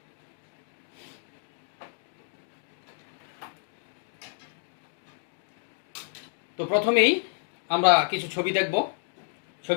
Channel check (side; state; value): right; silent; digital silence